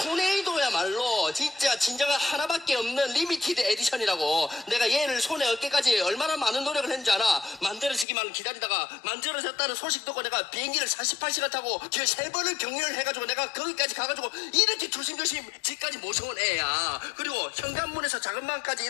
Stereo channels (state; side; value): drops out; right; at 8.1 s